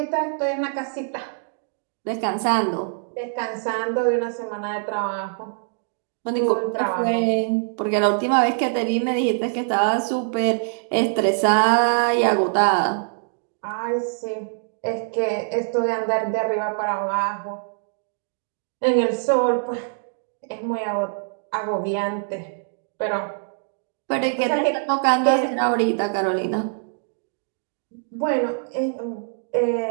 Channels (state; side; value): silent; left; digital silence